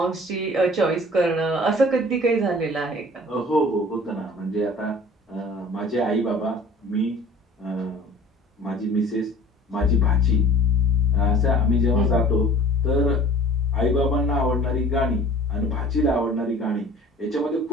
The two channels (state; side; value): normal; both; correlation 0.47